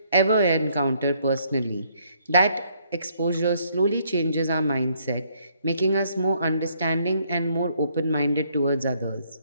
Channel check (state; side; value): inverted; both; correlation -0.68